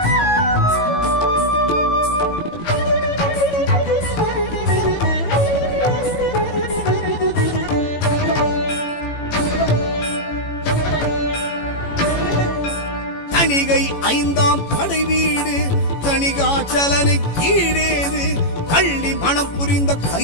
தணிகை ஐந்தாம் படை வீடு தணிகாச்சலனை கீழேது, கள்ளி மனம் புரிந்த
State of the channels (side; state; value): right; late; 18 ms